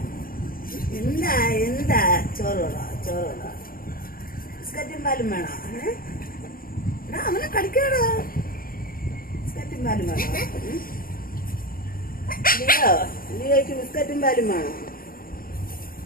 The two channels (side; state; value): right; late; 0.42 ms